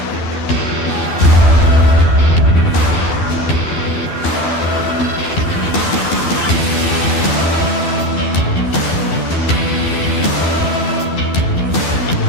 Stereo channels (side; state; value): right; late; 12 ms